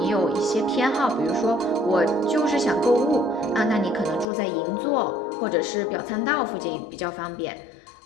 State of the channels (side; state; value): right; drops out; at 4.2 s